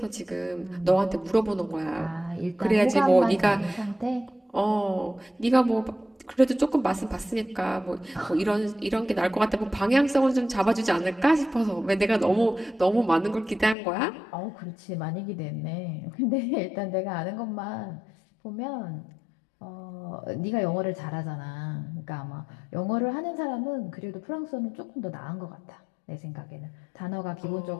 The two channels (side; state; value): right; drops out; at 13.8 s